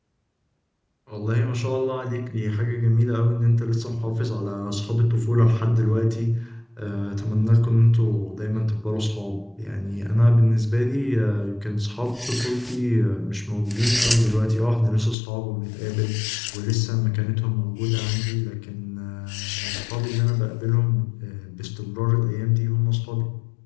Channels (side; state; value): right; drops out; at 15.2 s